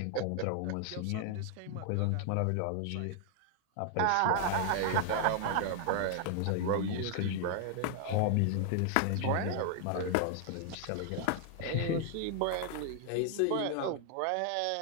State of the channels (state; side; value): different; both; correlation 0.00